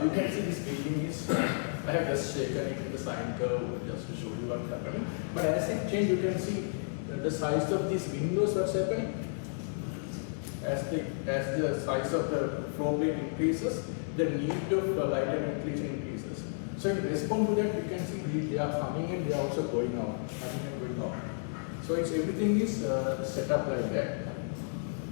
You can see this building is, I have just shaken it in the sine curve just to show you what's happening. But as it changes, you can see the size of these windows, what's happening. As the size of the floor plate increases, the need of light and ventilation increases. So in response to that, you can see they are coming and they are also going out, coming and going out. So everything is set up like that.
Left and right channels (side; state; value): right; silent; digital silence